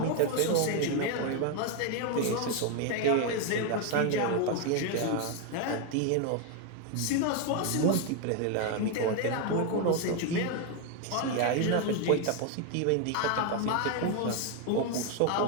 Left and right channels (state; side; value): different; both; correlation 0.01